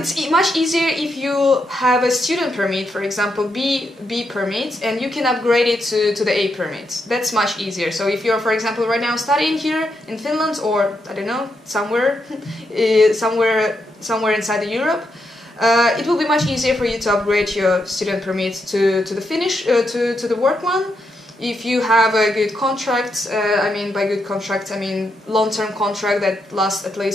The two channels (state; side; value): normal; both; correlation 0.81